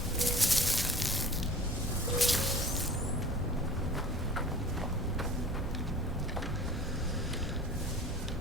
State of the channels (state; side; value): normal; both; correlation 0.42